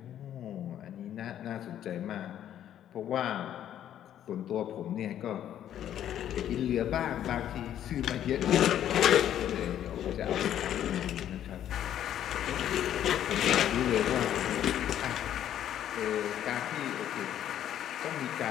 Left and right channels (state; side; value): quieter; right; 10.9 dB